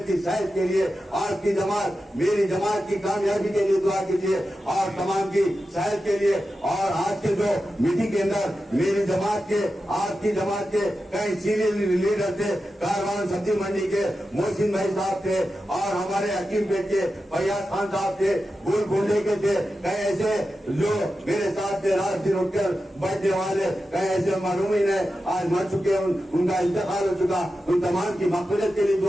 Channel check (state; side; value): normal; both; correlation 0.91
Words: की सेहत के लिए। आपकी जमात, मेरी जमात की कामयाबी के लिए दुआ कीजिए और तमाम की सेहत के लिए। और आज के जो मीटिंग के अंदर मेरी जमात के, आपकी जमात के कई सीनियर लीडर थे, कारवान सब्जी मंडी के मोहसिन भाई साहब थे और हमारे हकीम पेट के फैयाज खान साहब थे, गोलकुंडे के थे, कई ऐसे जो मेरे साथ थे रात दिन उठकर बैठने वाले, कई ऐसे मरहूमीन है आज मर चुके, उनका इंतकाल हो चुका। उन तमाम की मग़फ़िरत के लिए